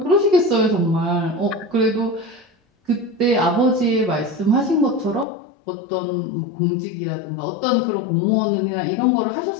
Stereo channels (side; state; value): right; drops out; at 5.2 s